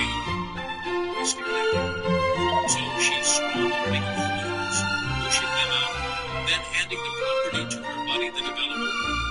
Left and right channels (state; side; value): identical; both; correlation 1.00